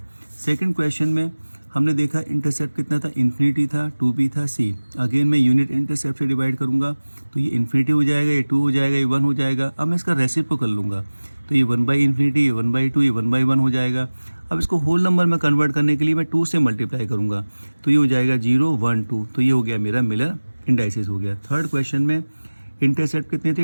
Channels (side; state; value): both; inverted; correlation -1.00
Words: सेकंड क्वेश्चन में हमने देखा इंटरसेप्ट कितना था, इन्फिनिटी था, 2b था, c। अगेन मैं यूनिट इंटरसेप्ट से डिवाइड करूँगा तो ये इन्फिनिटी हो जाएगा, ये 2 हो जाएगा, ये 1 हो जाएगा। अब मैं इसका रेसिप्रोकल लूँगा तो ये 1/∞, ये 1/2, ये 1/1 हो जाएगा। अब इसको होल नंबर में कन्वर्ट करने के लिए मैं 2 से मल्टीप्लाई करूँगा तो ये हो जाएगा 0 1 2, तो ये हो गया मेरा मिलर इंडाइसिस हो गया। थर्ड क्वेश्चन में इंटरसेप्ट कितने